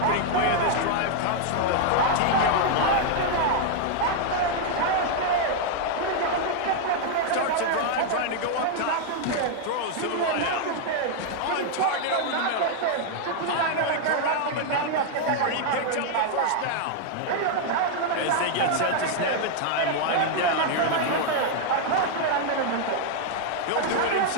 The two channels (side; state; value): both; different; correlation 0.00